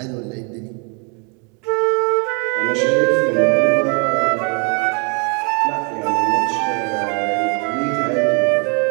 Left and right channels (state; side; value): quieter; left; 36.8 dB